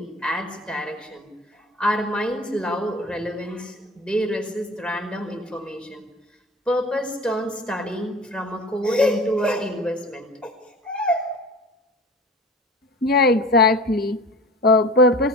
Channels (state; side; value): normal; both; correlation 0.39